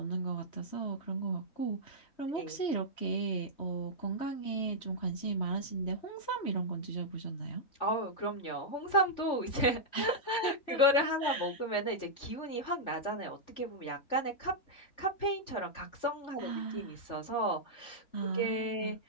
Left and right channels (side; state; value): right; late; 3.4 ms